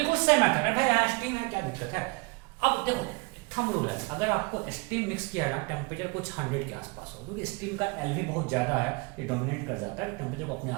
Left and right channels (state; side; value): quieter; left; 28.4 dB